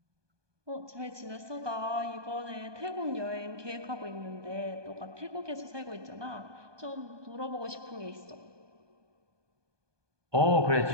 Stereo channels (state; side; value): late; left; 1.2 ms